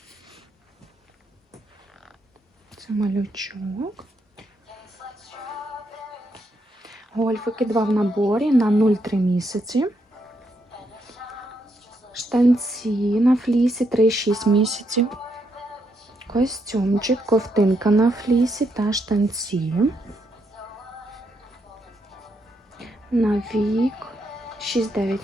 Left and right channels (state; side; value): normal; both; correlation 0.78